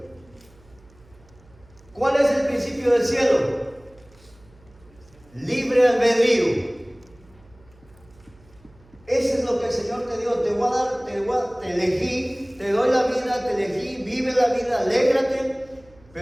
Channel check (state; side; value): noise; right; hum, 27 dB below the sound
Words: ¿Cuál es el principio del cielo? Libre albedrío. Eso es lo que el Señor te dio. Te elegí, te doy la vida, te elegí, vive la vida, alégrate,